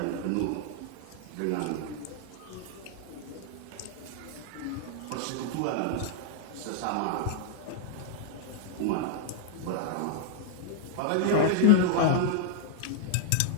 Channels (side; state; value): both; different; correlation -0.01